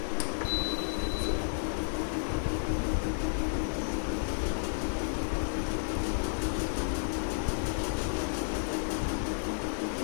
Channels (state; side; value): silent; right; 56 dB below the other